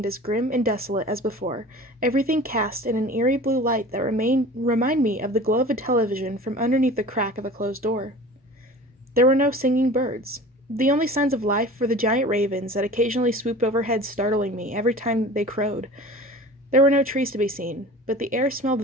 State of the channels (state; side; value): normal; both; correlation 0.40